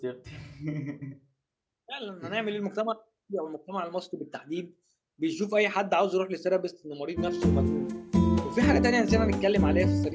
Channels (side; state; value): both; identical; correlation 1.00